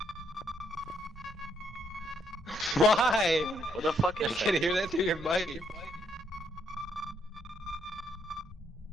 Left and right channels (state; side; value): normal; both; correlation 0.74